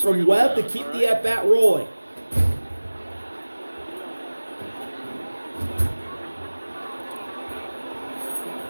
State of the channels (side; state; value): both; inverted; correlation -1.00